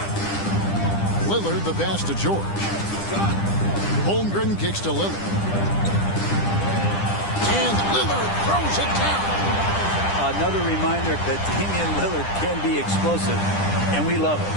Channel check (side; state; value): right; late; 10 ms